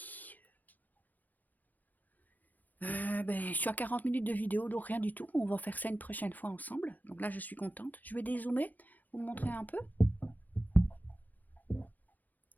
Je suis à 40 minutes de vidéo, donc rien du tout. On va faire ça une prochaine fois ensemble. Donc là, je suis contente. Je vais dézoomer, vous montrer un peu.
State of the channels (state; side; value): late; right; 0.083 ms